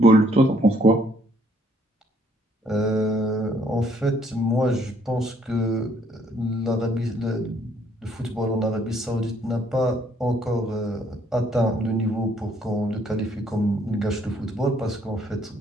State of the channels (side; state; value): both; normal; correlation 0.66